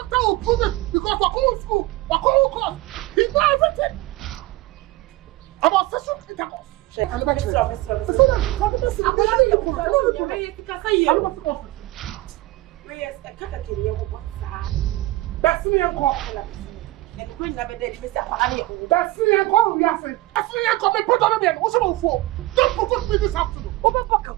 will prove it because we're going to school. We're going to court. He knows everything. About sexual intercourse. And the back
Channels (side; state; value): left; quieter; 18.5 dB